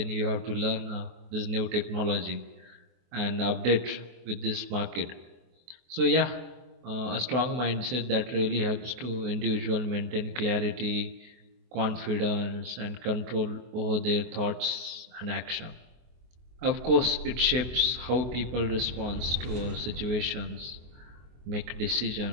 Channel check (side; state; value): left; late; 24 ms